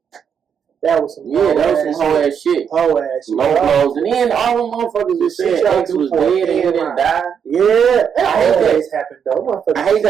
That was some whole ass shit. Whole ass shit. Low blows. And then all the motherfuckers was saying ex was dead and then died. Yeah. That always happened though. I hate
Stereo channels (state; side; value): quieter; left; 7.5 dB